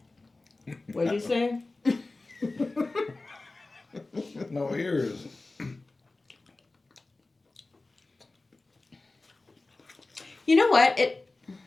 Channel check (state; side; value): quieter; right; 3.2 dB